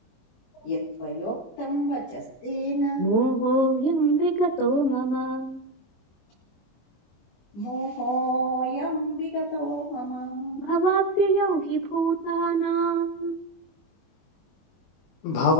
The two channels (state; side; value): late; right; 24 ms